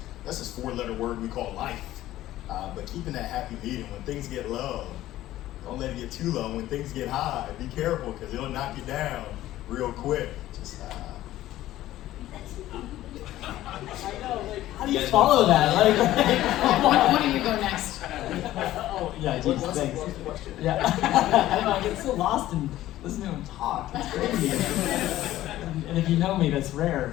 this 4-letter word we call life. But keeping that happy medium when things get low, Don't let it get too low. When things get high, be careful because it'll knock you down real quick. Just How do you follow that? Like, Why don't you go next? oh, yeah, geez, thanks. Yeah. I don't know, I get so lost in listening to him talk. It's crazy. And if you know me, that's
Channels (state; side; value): quieter; right; 14.6 dB